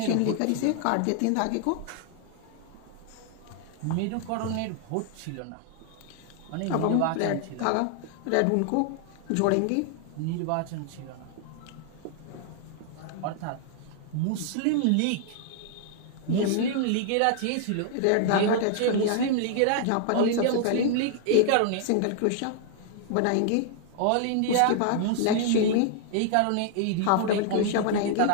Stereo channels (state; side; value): different; both; correlation -0.01